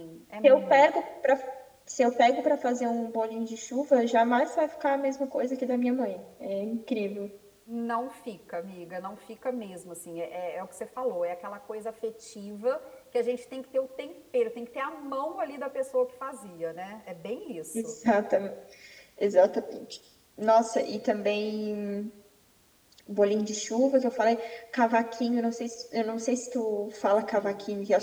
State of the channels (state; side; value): identical; both; correlation 1.00